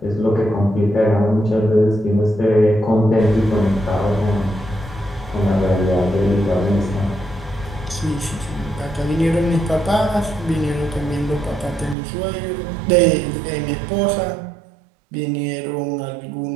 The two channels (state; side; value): drops out; left; at 12.0 s